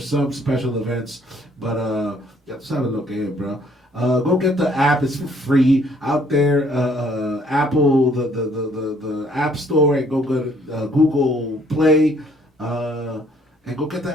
special events. But ya tú sabes lo que es, bro. Go get the app. It's for free out there. Apple, the App Store, and go to Google Play. And go get the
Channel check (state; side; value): normal; both; correlation 0.63